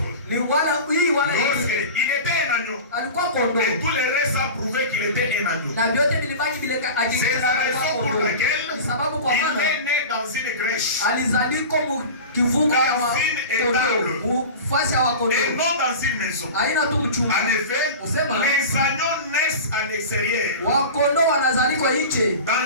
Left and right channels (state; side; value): inverted; both; correlation -0.32